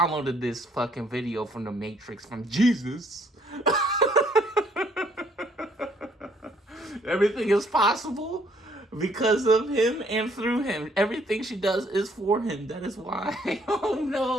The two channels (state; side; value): normal; both; correlation 0.65